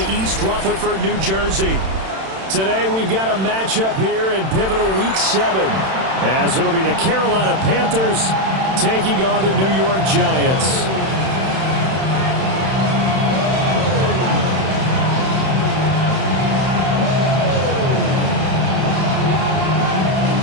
East Rutherford, New Jersey. Today we've got a matchup here in pivotal Week 7, as it'll be the Carolina Panthers taking on the New York Giants.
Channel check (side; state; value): left; late; 31 ms